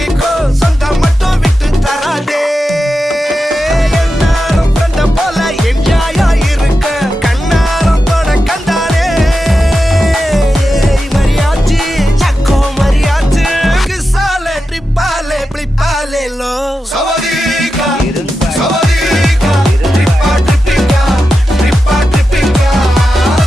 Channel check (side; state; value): both; normal; correlation 0.90